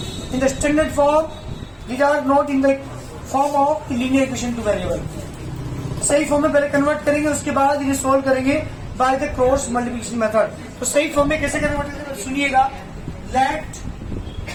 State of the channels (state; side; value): identical; both; correlation 1.00